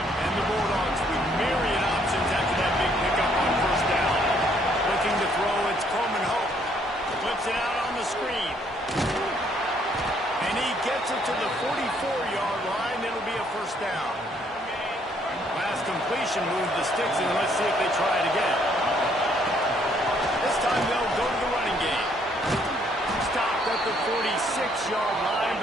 And the Bulldogs with myriad options after that big pickup on first down. Looking to throw, it's Coleman Hope. Flips it out on the screen. And he gets it to the 44-yard line. It'll be a first down. Last completion moved the sticks, and let's see if they try it again. This time they'll go to the running game. Stopped at the 46-yard line,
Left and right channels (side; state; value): both; normal; correlation 0.67